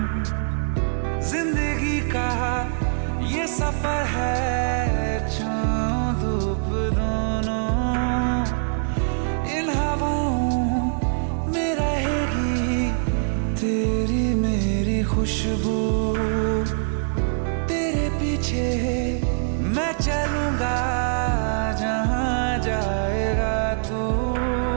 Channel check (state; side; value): silent; left; digital silence